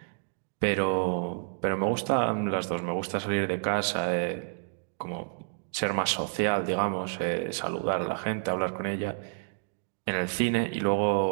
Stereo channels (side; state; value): left; silent; digital silence